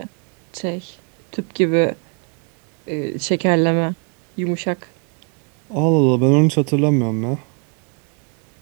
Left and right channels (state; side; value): quieter; left; 36.5 dB